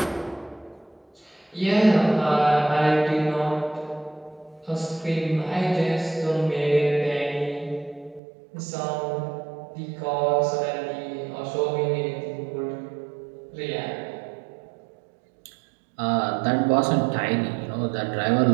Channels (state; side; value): drops out; left; at 8.2 s